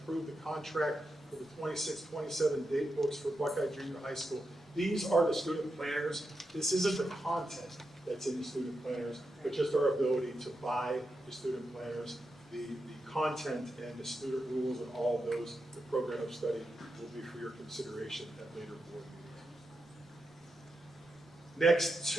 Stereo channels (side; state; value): both; normal; correlation 0.87